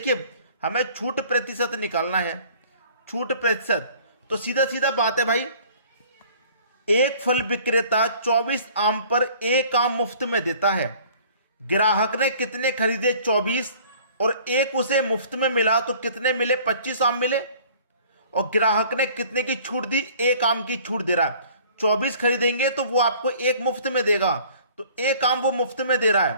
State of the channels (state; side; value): inverted; both; correlation -0.52